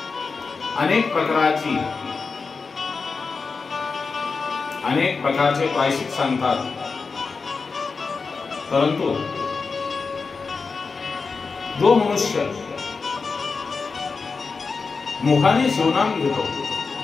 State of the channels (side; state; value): right; quieter; 4.6 dB